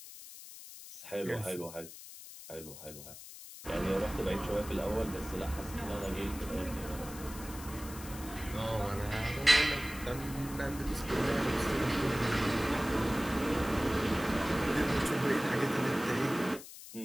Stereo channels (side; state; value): left; noise; hiss, 14 dB below the sound